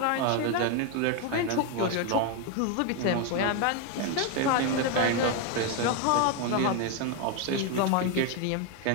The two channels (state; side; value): different; both; correlation 0.01